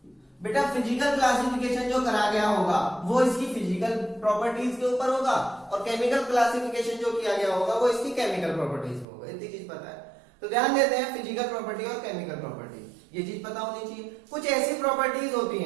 बेटा फिजिकल क्लासिफिकेशन जो करा गया होगा वो इसकी फिजिकल प्रॉपर्टीज के ऊपर होगा, और केमिकल क्लासिफिकेशन जो किया गया होगा वो इसकी केमिकल प्रॉपर्टीज पे होगा। इतनी चीज पता है तो ध्यान देते हैं, फिजिकल प्रॉपर्टी और केमिकल प्रॉपर्टी, ये चीज पता होनी चाहिए। कुछ ऐसी प्रॉपर्टीज होती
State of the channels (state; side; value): drops out; left; at 9.1 s